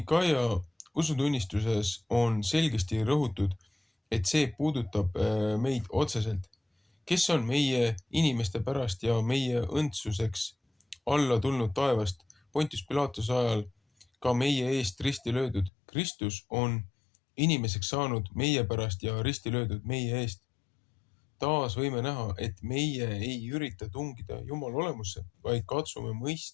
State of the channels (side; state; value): right; drops out; at 15.7 s